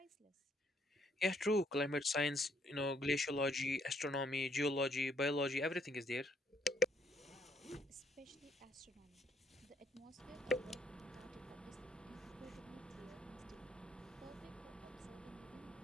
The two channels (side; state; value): both; normal; correlation 0.70